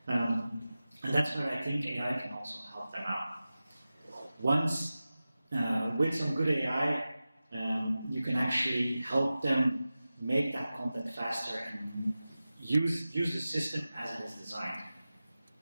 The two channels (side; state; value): both; inverted; correlation -0.95